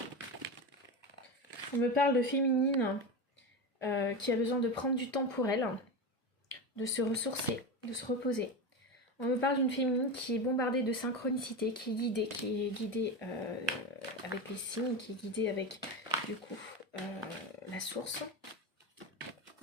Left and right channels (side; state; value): both; normal; correlation 0.20